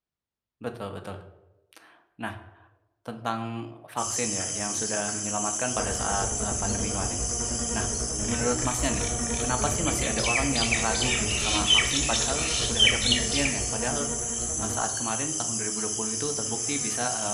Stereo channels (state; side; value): identical; both; correlation 1.00